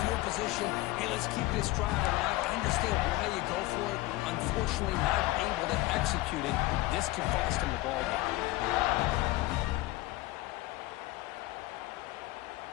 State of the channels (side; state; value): right; quieter; 18.7 dB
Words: field position, hey, let's keep this drive alive. I understand why you go for it. Unfortunately, not able to execute it. This could cost him the ball game.